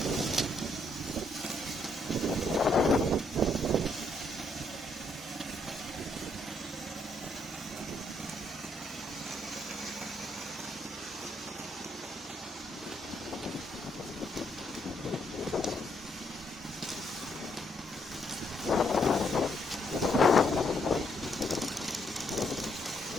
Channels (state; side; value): normal; both; correlation 0.73